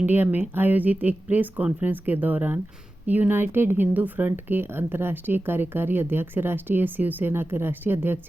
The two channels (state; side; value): normal; both; correlation 0.94